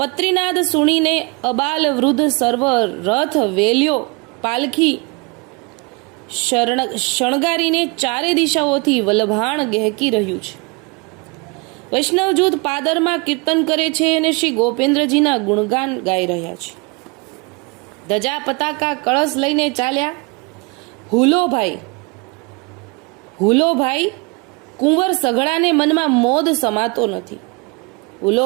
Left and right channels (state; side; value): quieter; left; 29.8 dB